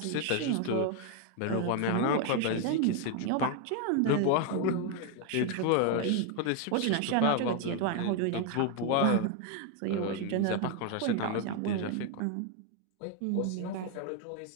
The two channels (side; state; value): both; different; correlation 0.01